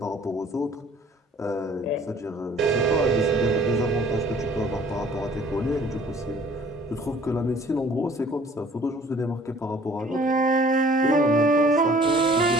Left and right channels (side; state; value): both; normal; correlation 0.53